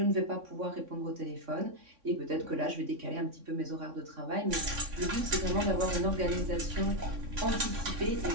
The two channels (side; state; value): left; late; 3.6 ms